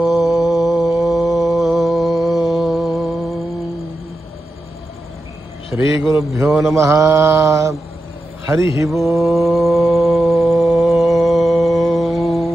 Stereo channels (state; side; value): normal; both; correlation 0.90